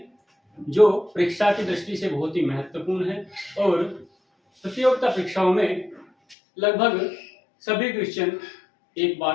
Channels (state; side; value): drops out; right; at 6.4 s